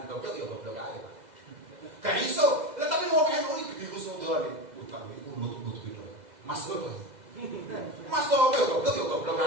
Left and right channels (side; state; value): left; late; 2.0 ms